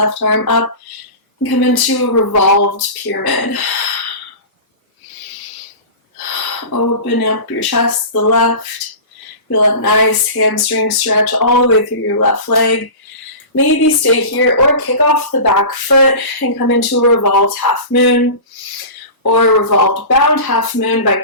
arm up and come into a revolved pyramid. Open up your chest to the left. Feel a nice hamstring stretch all the way through your left leg. Maybe stay here or kick off the back foot and come into a revolved half moon or a revolved bound half moon by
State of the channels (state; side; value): late; right; 1.1 ms